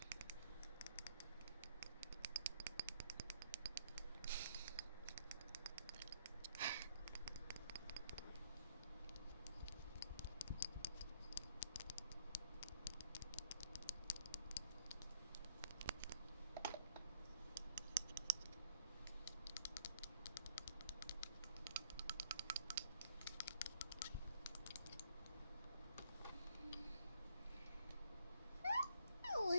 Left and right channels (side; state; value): both; inverted; correlation -0.64